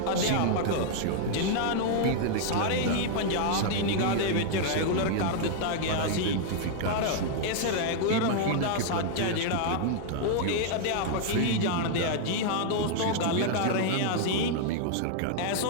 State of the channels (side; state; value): both; different; correlation -0.01